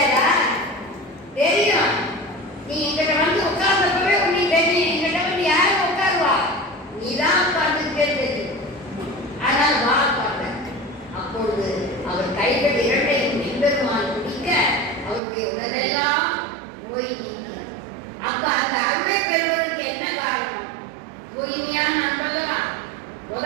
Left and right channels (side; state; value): left; drops out; at 15.2 s